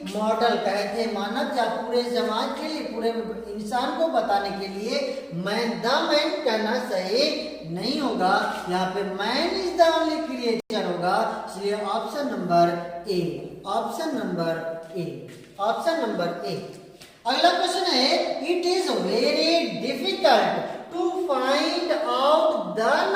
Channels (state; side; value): identical; both; correlation 1.00